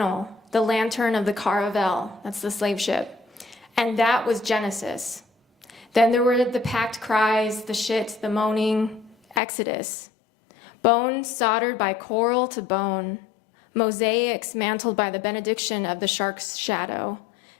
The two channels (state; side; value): drops out; right; at 9.4 s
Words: the lantern of the Caravel, that's the slave ship. And that was Genesis. Then there were the packed cries, the shit, the moaning, Exodus. Bone soldered by coral to bone. Mosaics mantled by the benediction of the shark's shadow.